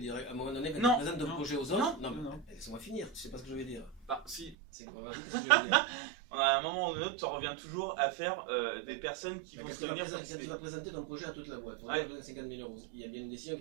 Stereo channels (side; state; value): left; drops out; at 4.5 s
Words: À un moment donné, quand tu présentes ton projet aux autres, non. Laisse-moi finir, tu sais pas ce que je vais dire. Bah si. C'est quoi, vas-y, qu'est-ce que je vais dire? À un moment ou un autre, tu reviens toujours à faire des personnes qui vont se réunir. Quand tu vas présenter ton projet à toute la boîte, pour 50 000 €, il y a bien une décision qui